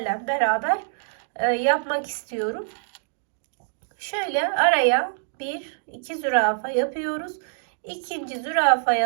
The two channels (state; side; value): silent; left; digital silence